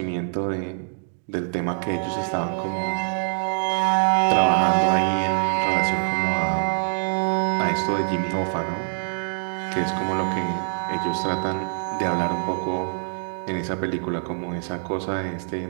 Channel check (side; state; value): left; silent; digital silence